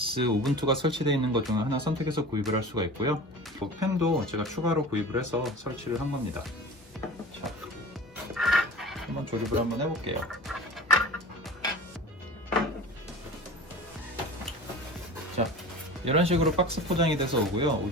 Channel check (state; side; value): normal; both; correlation 0.36